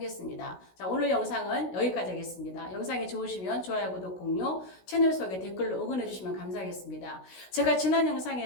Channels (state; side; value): late; right; 16 ms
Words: 자, 오늘 영상은 여기까지 하겠습니다. 영상이 좋으시면 좋아요, 구독, 공유, 채널 속에 댓글로 응원해 주시면 감사하겠습니다. 제가 지난